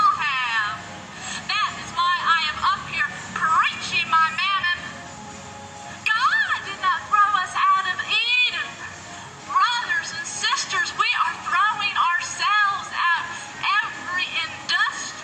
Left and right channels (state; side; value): identical; both; correlation 1.00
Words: have. That is why I am up here preaching my mammon. God did not throw us out of Eden. Brothers and sisters, we are throwing ourselves out every